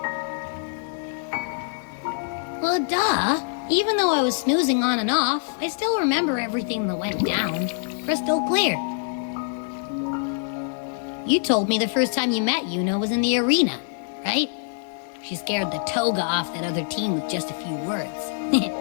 Well, duh. Even though I was snoozing on and off, I still remember everything that went down. Crystal clear. You told me the first time you met Iuno was in the arena, right? She scared the toga off that other team with just a few words.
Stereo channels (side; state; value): right; silent; 57 dB below the other